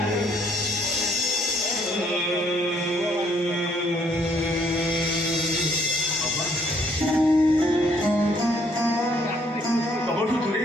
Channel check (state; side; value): normal; both; correlation 0.66